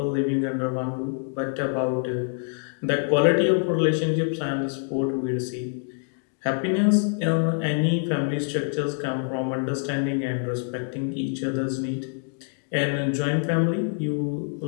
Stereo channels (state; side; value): silent; right; 61 dB below the other